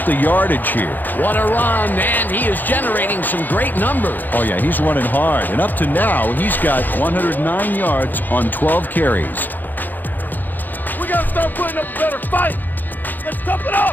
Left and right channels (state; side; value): late; right; 0.087 ms